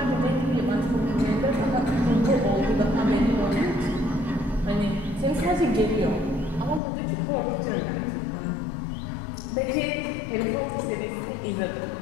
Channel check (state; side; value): drops out; right; at 6.8 s